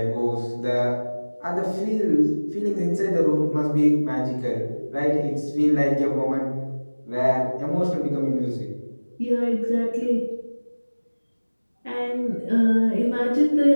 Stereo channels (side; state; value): both; inverted; correlation -1.00